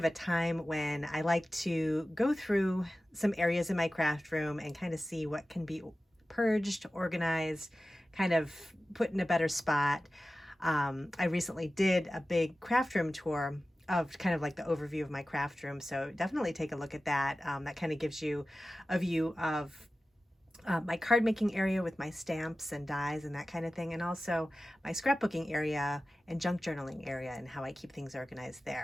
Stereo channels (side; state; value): both; normal; correlation 0.95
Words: a time when I like to go through some areas in my craft room and kind of see what can be purged, organized, kind of put in a better spot. I recently did a big craft room tour of kind of like the overview of my craft room, so definitely take a look at that. That kind of gives you a view of my card making area with my stamps and dies and that kind of thing, and also my scrapbooking area and junk journaling area and how I keep things organized